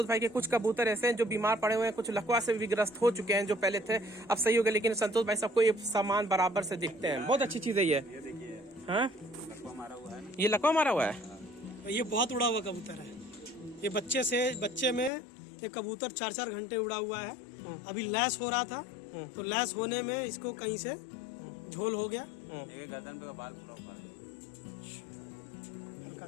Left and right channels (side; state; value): right; drops out; at 15.1 s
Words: भाई के कुछ कबूतर ऐसे हैं जो बीमार पड़े हुए हैं, कुछ लकवा से भी ग्रस्त हो चुके हैं, जो पहले थे अब सही हो गए, लेकिन संतोष भाई सबको ये सामान बराबर से दिखते हैं। बहुत अच्छी चीज है ये। हाँ, ये लकवा मारा हुआ है, ये बहुत उड़ा हुआ कबूतर है। ये बच्चे में ये कबूतर 4-4 घंटे उड़ा हुआ है। अभी लैस हो रहा था, तो लैस होने में इसको कहीं से झोल हो गया। एक गर्दन पे का बाल पूरा उखाड़